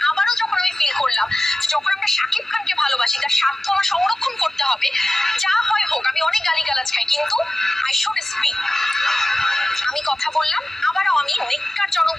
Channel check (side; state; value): both; normal; correlation 0.94